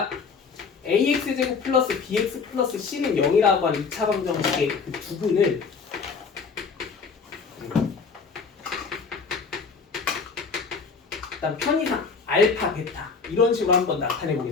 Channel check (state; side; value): quieter; right; 5.2 dB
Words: ax 제곱 플러스 bx 플러스 c는 0이라고 하는 2차 방정식의 그 부분을 일단 편의상 알파, 베타 이런 식으로 한번 나타내